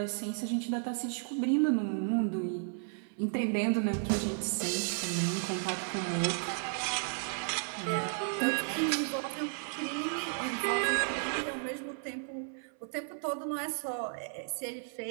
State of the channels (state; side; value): silent; left; 55 dB below the other